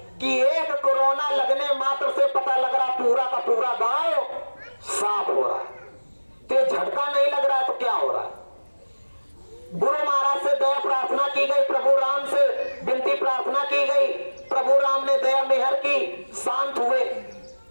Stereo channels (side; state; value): both; inverted; correlation -1.00